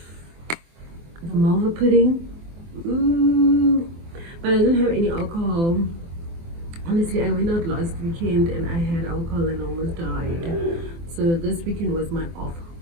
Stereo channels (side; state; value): left; late; 24 ms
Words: the malva pudding. Ooh. But I didn't have any alcohol. Honestly, I went out last weekend and I had alcohol and almost died. So this weekend was my off